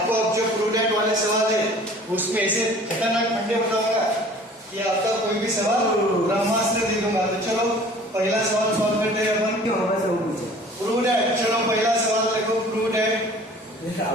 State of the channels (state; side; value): normal; both; correlation 0.48